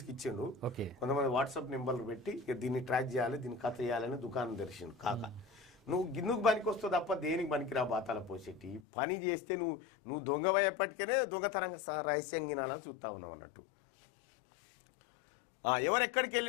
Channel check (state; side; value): drops out; right; at 8.8 s